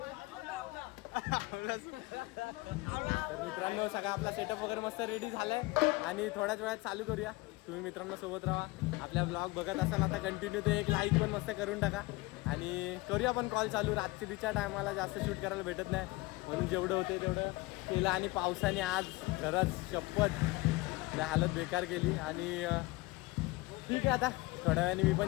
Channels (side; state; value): right; quieter; 22.0 dB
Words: तर मित्रांनो सगळा आपला सेटअप वगैरे मस्त रेडी झालाय आणि थोड्याच वेळात चालू करूया. तुम्ही मित्रांनो सोबत राहा. आपल्या ब्लॉग बघत असाल आता कंटिन्यू ते एक लाईक पण मस्त करून टाका आणि करूया पण कॉल चालू. रात्रीच्या टायमाला जास्त शूट करायला भेटत नाही म्हणून जेवढं होते तेवढं केलं आणि पावसाने आज खरंच शपथ हालत बेकार केली आणि ठीक आहे आता थोड्या वेळाने मी